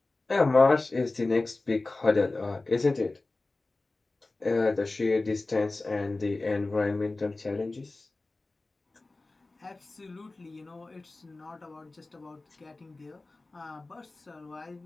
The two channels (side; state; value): right; quieter; 3.2 dB